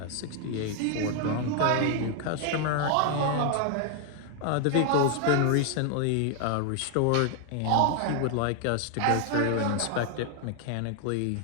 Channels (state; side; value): different; both; correlation 0.00